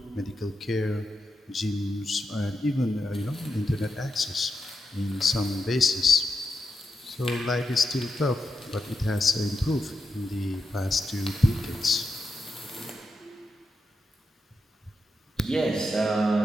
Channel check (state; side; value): normal; both; correlation 0.87